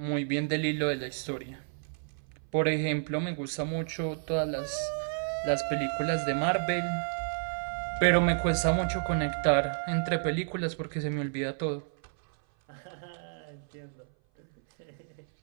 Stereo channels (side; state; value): left; silent; 57 dB below the other